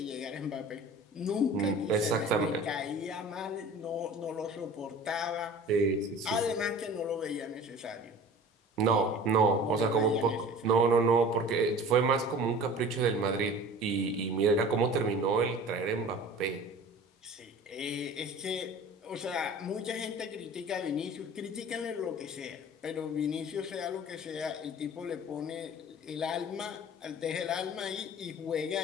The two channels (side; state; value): both; normal; correlation 0.42